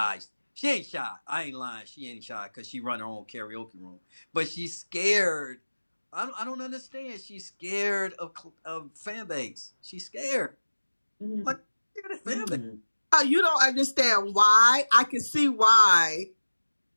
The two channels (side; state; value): both; inverted; correlation -1.00